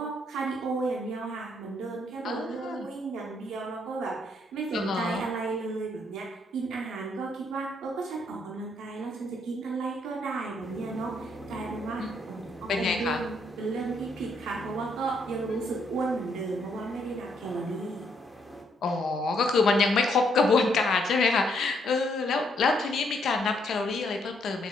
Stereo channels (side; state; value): both; normal; correlation 0.72